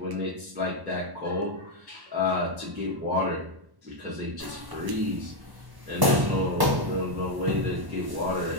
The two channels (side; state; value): left; late; 1.1 ms